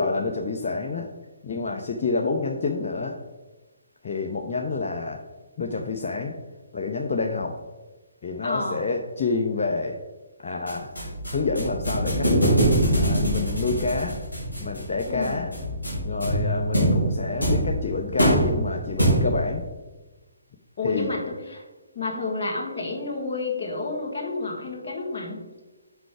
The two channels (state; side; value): inverted; both; correlation -0.57